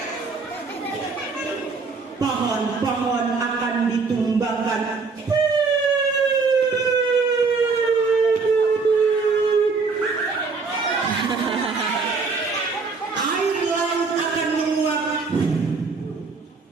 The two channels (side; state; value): left; quieter; 4.5 dB